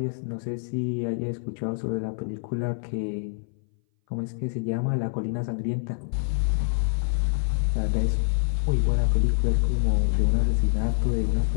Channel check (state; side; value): silent; right; 59 dB below the other